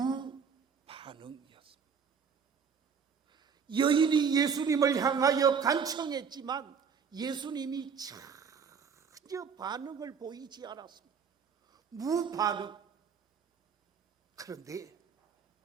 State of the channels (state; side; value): quieter; left; 6.4 dB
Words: 여인이 예수님을 향하여 간청했지만 예수님이 전혀 반응을 보이지 않았습니다. 무반응. 그런데